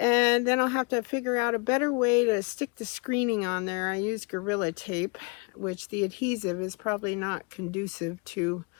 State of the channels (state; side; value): quieter; right; 32.1 dB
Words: then I'll have to figure out a better way to stick the screening on there. I use Gorilla Tape, which the adhesive is probably not conducive to